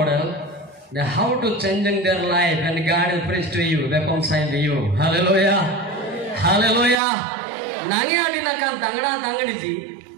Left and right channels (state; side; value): drops out; left; at 7.0 s